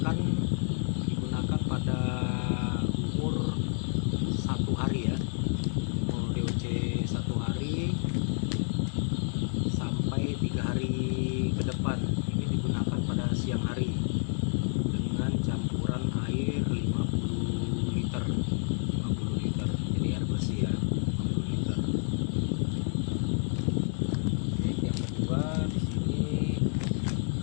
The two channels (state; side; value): silent; right; 58 dB below the other